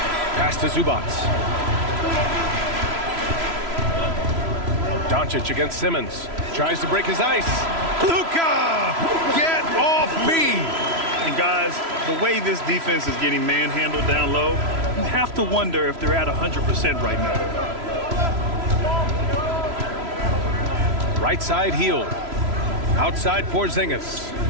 Pass to Zubac. Doncic against Simmons. Tries to break his ice. Luka! Get off me! And guys, the way this defense is getting manhandled down low, you have to wonder if they're at 100% right now. Right side Hield. Outside Porzingis.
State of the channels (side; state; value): left; late; 3.0 ms